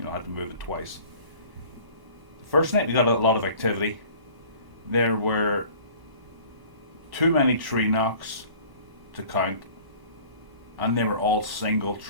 I had to move it twice. The first night we got a lot of activity. There were too many tree knocks to count, and they were all single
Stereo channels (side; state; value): left; late; 1.0 ms